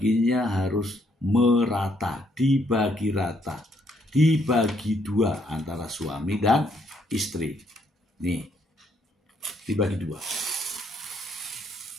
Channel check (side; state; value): both; normal; correlation 0.71